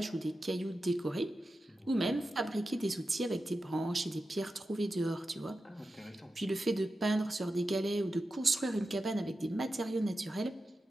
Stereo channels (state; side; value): normal; both; correlation 0.91